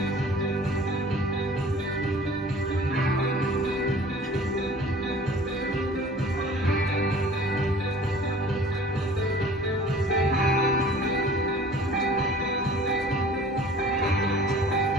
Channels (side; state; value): both; normal; correlation 0.47